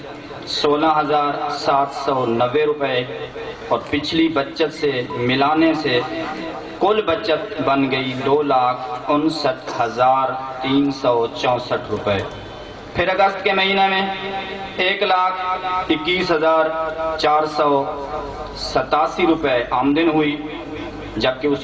16,790 روپے، اور پچھلی بچت سے ملانے سے کل بچت بن گئی 2,59,364 روپے۔ پھر اگست کے مہینے میں 1,21,487 روپے آمدن ہوئی، جبکہ اس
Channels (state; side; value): identical; both; correlation 1.00